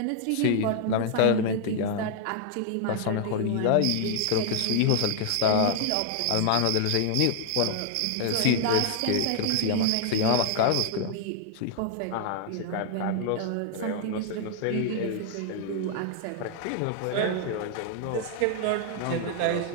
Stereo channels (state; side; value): different; both; correlation 0.00